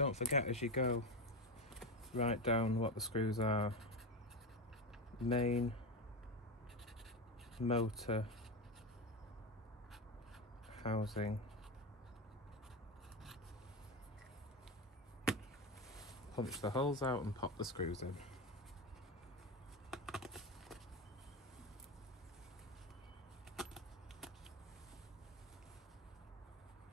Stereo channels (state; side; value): normal; both; correlation 0.17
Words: forget as you go, write down what the screws are. Main, motor, housing, punch the holes out and pop the screws in.